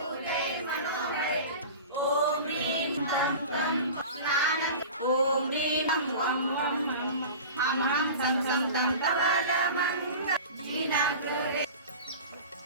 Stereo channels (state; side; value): inverted; both; correlation -0.35